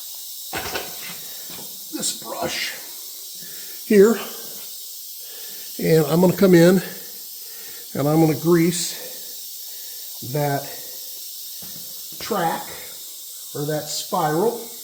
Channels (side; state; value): both; identical; correlation 1.00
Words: this brush here, and I'm going to come in and I'm going to grease that track or that spiral.